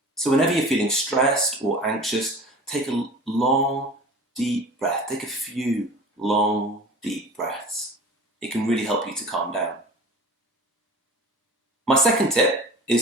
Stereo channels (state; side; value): normal; both; correlation 0.39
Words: So whenever you're feeling stressed or anxious, take a long, deep breath. Take a few long, deep breaths. It can really help you to calm down. My second tip